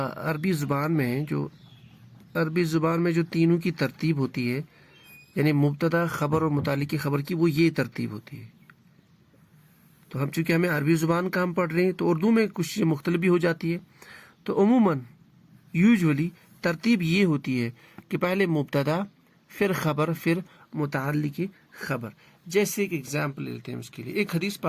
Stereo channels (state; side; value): identical; both; correlation 1.00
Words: عربی زبان میں جو تینوں کی ترتیب ہوتی ہے، یعنی مبتدا، خبر اور متعلق خبر کی، وہ یہ ترتیب ہوتی ہے۔ تو ہم چونکہ ہمیں عربی زبان کا ہم پڑھ رہے ہیں، تو اردو میں کچھ چیزیں مختلف بھی ہو جاتی ہے۔ تو عموماً یوزولی ترتیب یہ ہوتی ہے کہ پہلے مبتدا، پھر خبر، پھر متعلق خبر۔ جیسے ایک ایگزامپل لیتے ہیں اس کے لیے، ایک حدیث